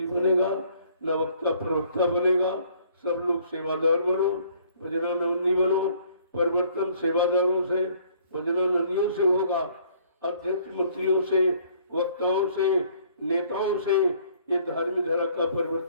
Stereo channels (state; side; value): inverted; both; correlation -0.59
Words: बनेगा, न वक्ता प्रवक्ता बनेगा। सब लोग सेवादार बनो, भजनानंदी बनो। परिवर्तन सेवादारों से, भजनानंदियों से होगा, अध्यक्ष मंत्रियों से, वक्ताओं से, नेताओं से ये धार्मिक धारा का